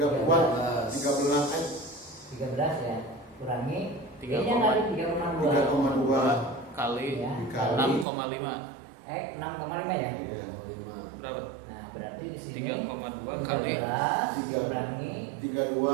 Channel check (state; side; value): drops out; left; at 8.1 s